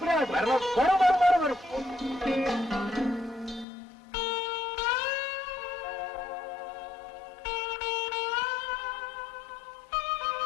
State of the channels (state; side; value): drops out; right; at 3.7 s